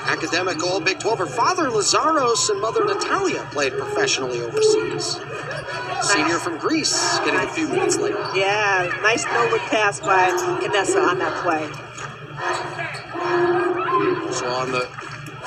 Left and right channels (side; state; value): both; identical; correlation 1.00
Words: Academic All Big 12. Her father, Lazaros, and mother, Natalia, played professionally overseas. Senior from Greece, getting a few minutes later. Yeah, nice no-look pass by Canessa on that play. So on the